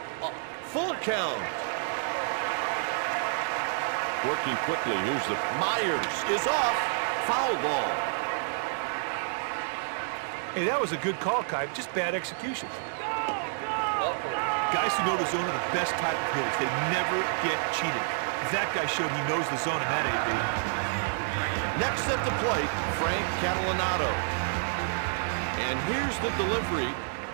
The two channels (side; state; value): left; silent; 59 dB below the other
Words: Full count. Working quickly. Here's the Myers is off. Foul ball. Hey, that was a good call, Kite. Just bad execution. Ball 4. Guys who know the zone are the best type of hitters. They never get cheated. That guy showed he knows the zone in that AB. Next at the plate, Frank Catalanato. And here's the delivery.